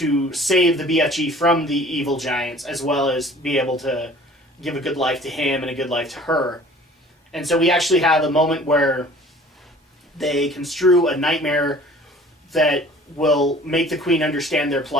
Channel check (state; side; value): normal; both; correlation 0.49